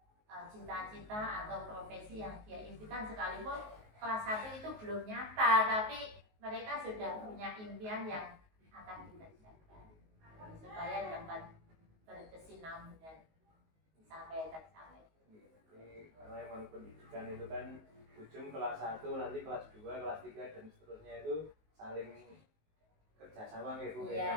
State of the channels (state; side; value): late; left; 19 ms